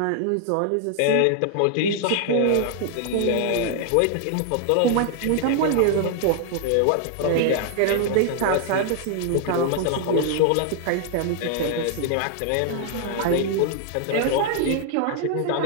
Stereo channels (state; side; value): different; both; correlation 0.00